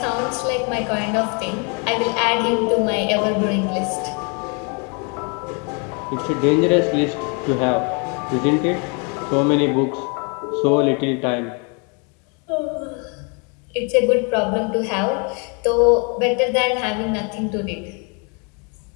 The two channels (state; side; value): quieter; right; 35.2 dB